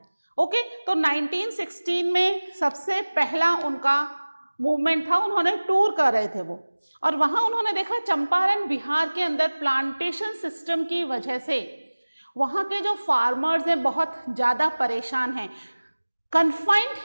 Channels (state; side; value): inverted; both; correlation -1.00